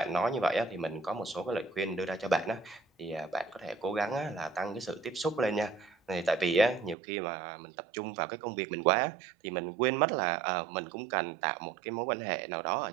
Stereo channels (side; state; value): left; drops out; at 7.0 s